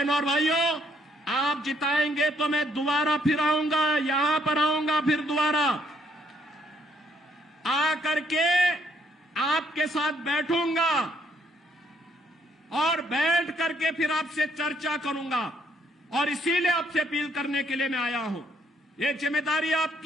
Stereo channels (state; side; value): normal; both; correlation 0.70